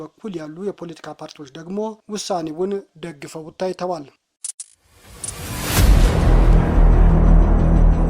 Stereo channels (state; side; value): identical; both; correlation 1.00